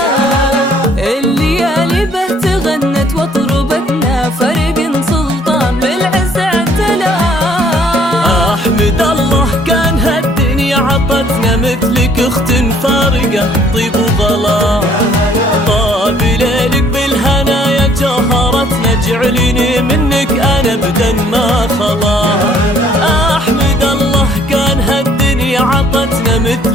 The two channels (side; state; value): both; normal; correlation 0.61